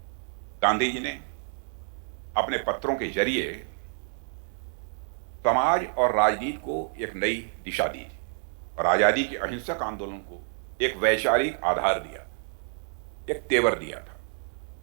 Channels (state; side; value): silent; left; 59 dB below the other